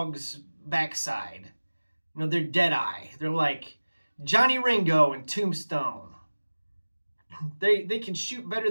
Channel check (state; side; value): inverted; both; correlation -1.00